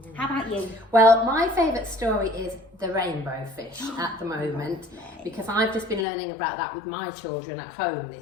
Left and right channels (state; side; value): drops out; right; at 6.1 s